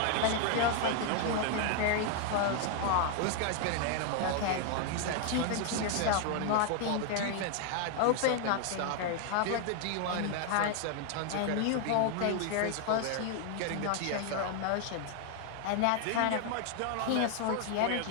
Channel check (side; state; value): both; different; correlation 0.00